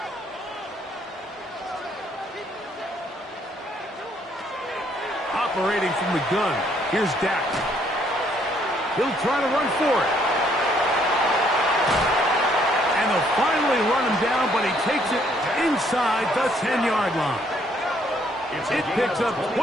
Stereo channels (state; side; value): normal; both; correlation 0.67